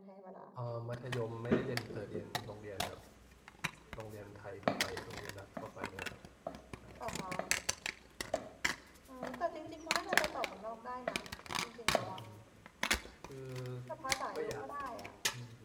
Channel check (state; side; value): identical; both; correlation 1.00